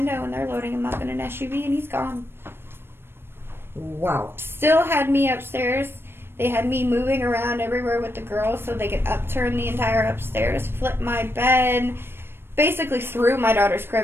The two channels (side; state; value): left; late; 0.11 ms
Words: and they're loading him up in an SUV and he's gone. Wow. Still had me upstairs. They had me moving around everywhere with the girls so they could upturn the entire upstairs, flip my bed, basically threw my daughter's